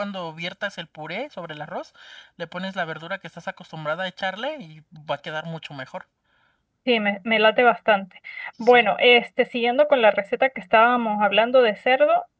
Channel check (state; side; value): identical; both; correlation 1.00